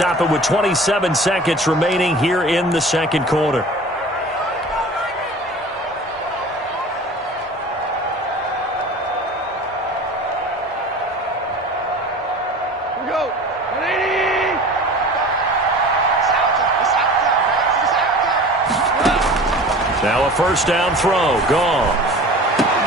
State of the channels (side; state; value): both; normal; correlation 0.40